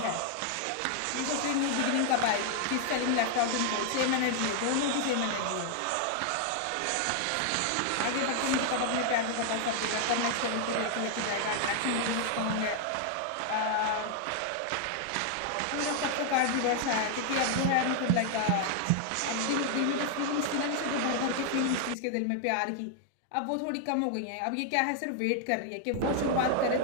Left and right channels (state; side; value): different; both; correlation 0.00